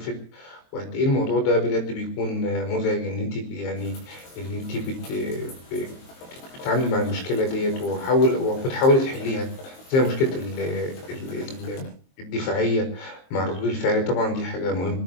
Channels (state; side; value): late; right; 22 ms